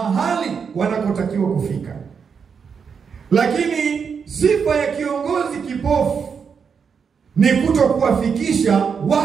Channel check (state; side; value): quieter; left; 6.3 dB